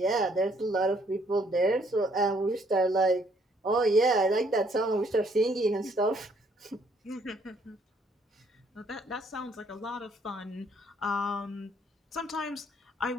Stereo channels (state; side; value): normal; both; correlation 0.66